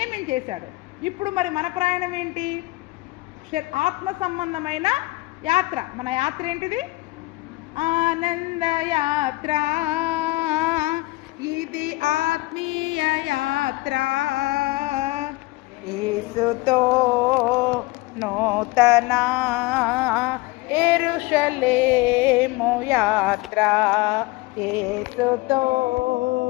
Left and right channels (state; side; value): quieter; right; 21.1 dB